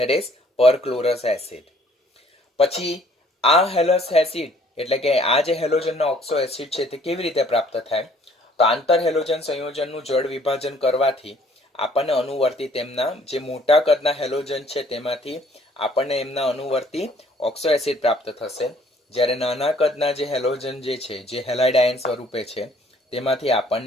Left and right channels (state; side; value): normal; both; correlation 0.59